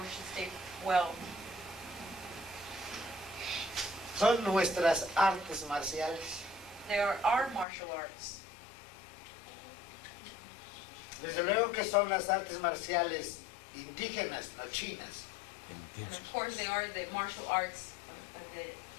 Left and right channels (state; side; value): drops out; right; at 7.7 s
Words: to stay well. Son nuestras artes marciales. They are our martial arts. Desde luego que son las artes marciales indígenas, no chinas. And of course they are the martial arts,